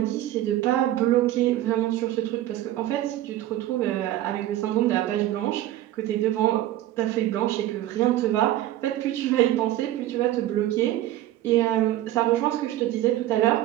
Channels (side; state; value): left; quieter; 14.2 dB